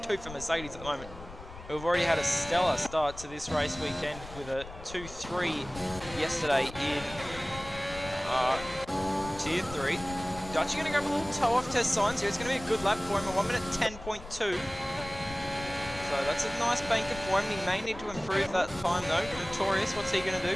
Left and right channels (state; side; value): noise; left; rumble, 15 dB below the sound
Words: for Mercedes at the moment. We've already had a stellar start to this race weekend with a 2-3 yesterday in Tier 3. Dutchy going to go for a little toe-off test signs here. It's going to be a good lap for him, a 1 minute 10.2. So that's a nice banker for him. He may need to improve that time though. Notorious, what's he going to